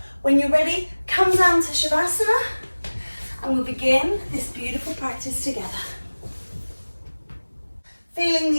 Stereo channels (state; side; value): inverted; both; correlation -1.00